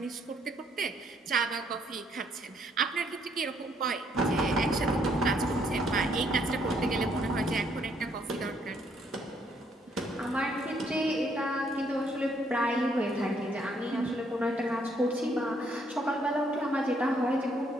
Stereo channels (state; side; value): normal; both; correlation 0.69